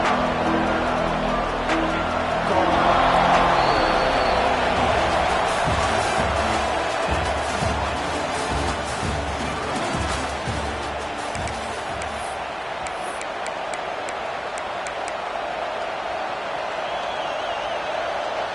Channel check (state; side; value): identical; both; correlation 1.00